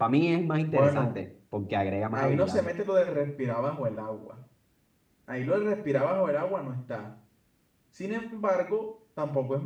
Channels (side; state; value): both; identical; correlation 1.00